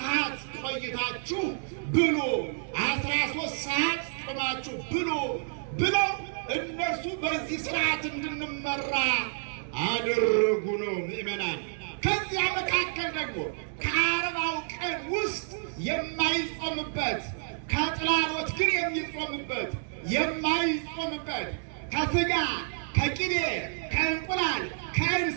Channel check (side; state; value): left; silent; digital silence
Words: ቆይታችሁ ብሉ፣ 13 ሰዓት ጾማችሁ ብሉ ብለው እነርሱ በዚህ ስርዓት እንድንመራ አደረጉ ነው ምእመናን። ከዚያ መካከል ደግሞ ከ40ው ቀን ውስጥ የማይጾምበት ከጥላሎት ግን የሚጾምበት የማይጾምበት ከስጋ ከቅቤ ከእንቁላል